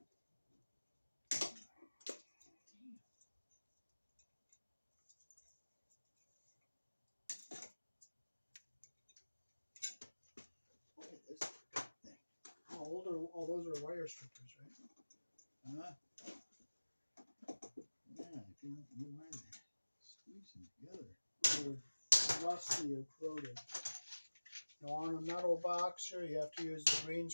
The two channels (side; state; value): both; inverted; correlation -1.00